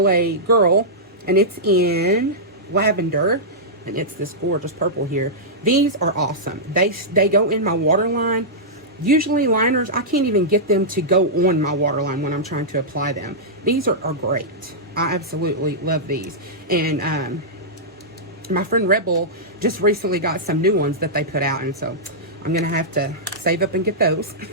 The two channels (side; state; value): both; normal; correlation -0.13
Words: Girl, and it's in lavender, and it's this gorgeous purple here. These are awesome. They go in my waterline. Usually liners, I can't even get them to go on my waterline when I'm trying to apply them. These are great. I absolutely love these. And my friend Rebel just recently got some new ones that they put out, and so I'm going to have to save up and get those.